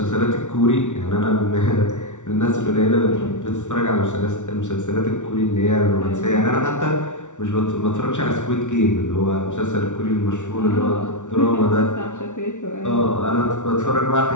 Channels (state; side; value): late; right; 0.86 ms